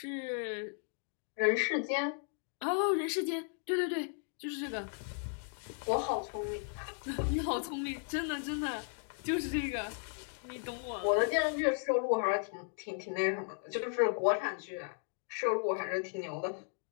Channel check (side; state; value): right; silent; 54 dB below the other